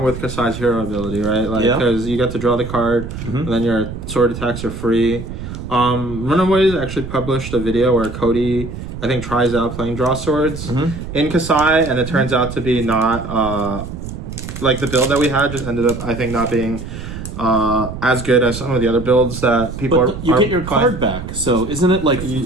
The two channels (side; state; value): right; noise; rumble, 9 dB below the sound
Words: with Kasai's hero ability, right? Like because you get to draw the card, and then your sword attacks are free. Runaways actually published a video where Cody, I think, tries out playing draw swords in Kasai, and it turns out to be not like the build that we had. Just ended up, I think, not being as good as some of the other builds that people are. You get your card back, so isn't it like